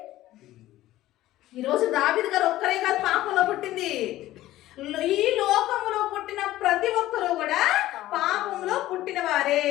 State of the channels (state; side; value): quieter; right; 15.3 dB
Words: ఈరోజు దావీదు గారు ఒక్కరే కాదు పాపంలో పుట్టింది. ఈ లోకంలో పుట్టిన ప్రతి ఒక్కరూ కూడా పాపంలో పుట్టిన వారే.